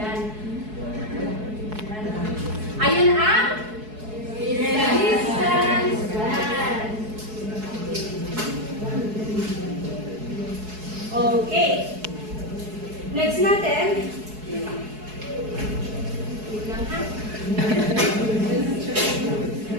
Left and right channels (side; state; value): left; late; 4.7 ms